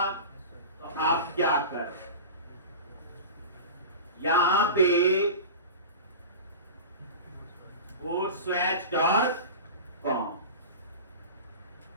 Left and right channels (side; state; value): both; inverted; correlation -0.31